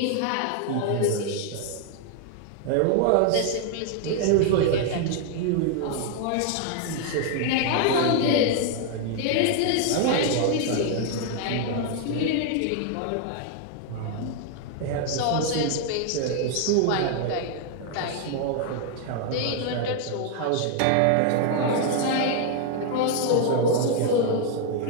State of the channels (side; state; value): both; different; correlation 0.00